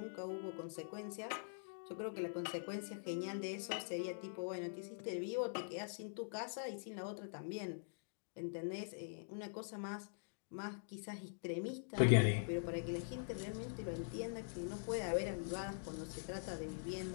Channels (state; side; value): silent; right; digital silence